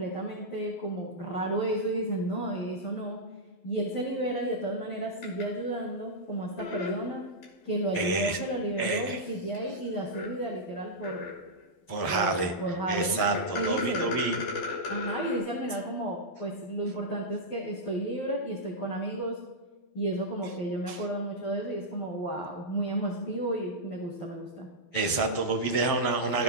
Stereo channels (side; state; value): right; late; 11 ms